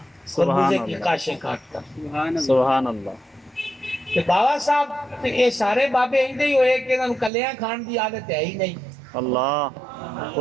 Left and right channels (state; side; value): drops out; left; at 7.3 s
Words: سبحان خربوزے کی اللہ کاشیں کاٹ کر. سبحان اللہ. سبحان اللہ. کہ بابا صاحب یہ سارے بابے ایندے ہی ہوئے کہ انہوں کلیاں کھان دی عادت ہے ہی نہیں. اللہ